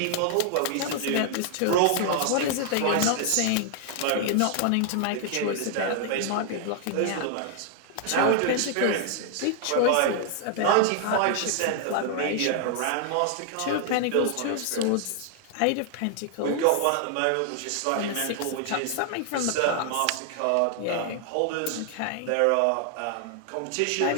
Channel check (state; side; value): different; both; correlation 0.00